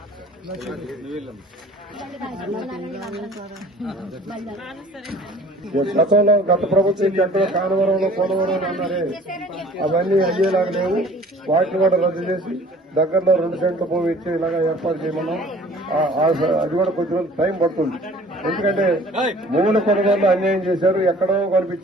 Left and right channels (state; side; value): normal; both; correlation 0.50